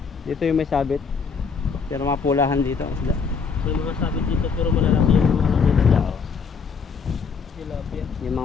Dito yung may sabit. Pero mga pulahan dito ang isda. May mga sabit dito pero malalaki yung mga nila. Tilapia. Yung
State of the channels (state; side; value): quieter; right; 5.6 dB